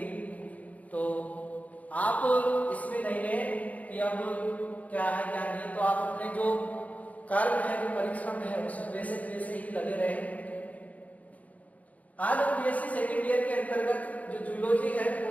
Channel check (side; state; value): right; late; 0.071 ms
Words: तो आप इसमें नहीं लें कि अब क्या है क्या नहीं, तो आप अपने जो कर्म है, जो परिश्रम है, उसमें वैसे ही लगे रहे। आज हम बीएससी सेकेंड ईयर के अंतर्गत जो जूलॉजी है